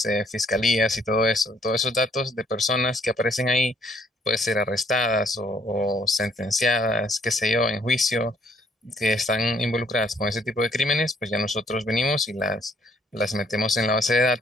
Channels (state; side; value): normal; both; correlation 0.65